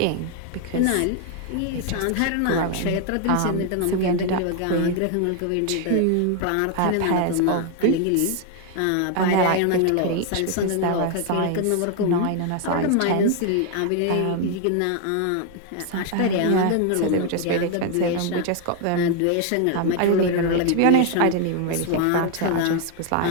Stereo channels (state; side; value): different; both; correlation 0.00